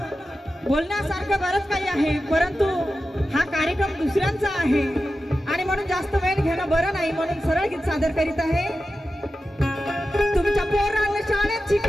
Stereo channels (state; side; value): normal; both; correlation 0.92